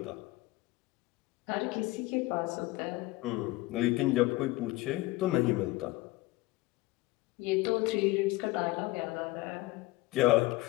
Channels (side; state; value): right; quieter; 19.9 dB